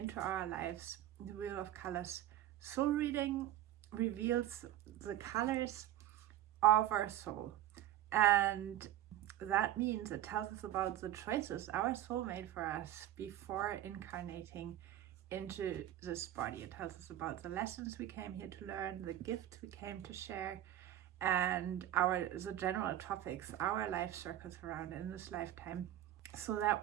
our lives. The Wheel of Colors soul reading reveals the colors of our soul, and that means it tells us about the choices our soul made for us before incarnating into this body. It tells us about the lessons we came here to learn, the gifts we came to share, and the general topics our life circles around in this lifetime, so that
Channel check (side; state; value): left; quieter; 12.9 dB